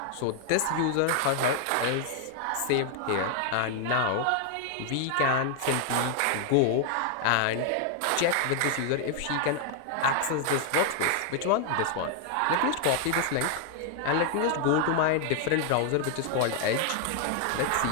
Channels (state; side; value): different; both; correlation 0.00